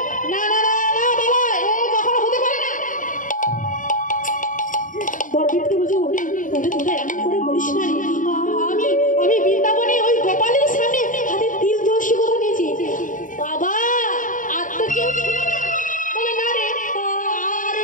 না না না না বাবা, এ কখনো হতে পারে না। বড় বলছে ওরে ওরে তোরা এমন করে বলিস না রে। আমি বৃন্দাবনে ওই গোপালের সামনে হাতে তিল তুলসী কথা নিয়েছি বাবা। আর তো কেউ ছিল না? বলে না রে,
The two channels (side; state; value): right; late; 0.38 ms